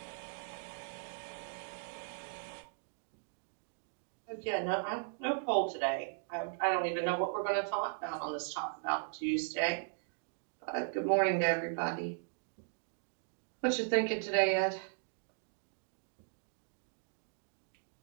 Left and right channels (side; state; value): left; silent; digital silence